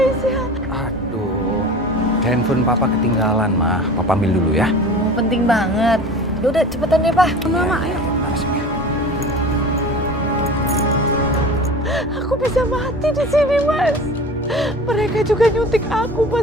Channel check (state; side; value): normal; both; correlation 0.37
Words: Aduh, handphone papa ketinggalan, mah. Papa ambil dulu ya. Penting banget. Udah cepetan deh, Pak. Mama, ayo. Aku bisa mati di sini Mas. Mereka juga nyuntik aku